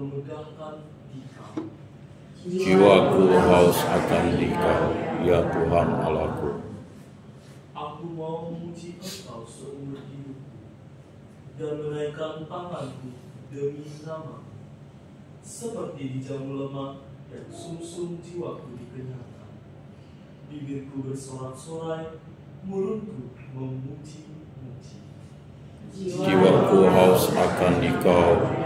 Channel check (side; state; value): both; identical; correlation 1.00